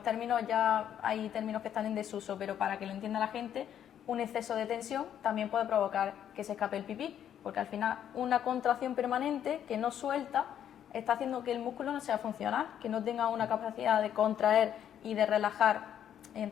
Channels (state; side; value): quieter; right; 9.8 dB